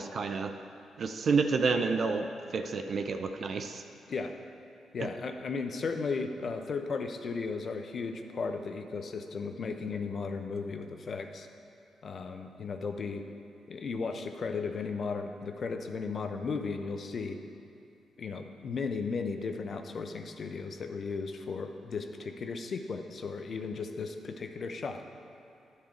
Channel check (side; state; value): both; normal; correlation 0.78